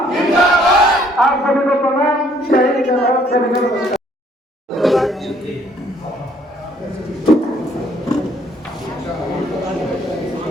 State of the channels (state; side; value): normal; both; correlation 0.63